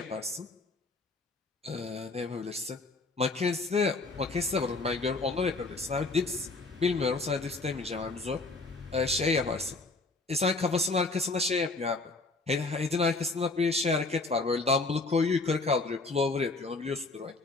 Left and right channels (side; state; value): right; quieter; 3.5 dB